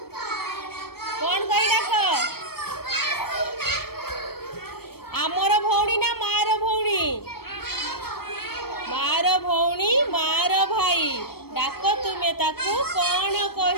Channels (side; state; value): right; late; 0.95 ms